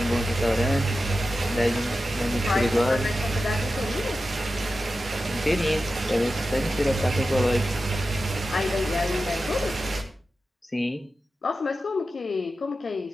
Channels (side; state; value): both; normal; correlation 0.92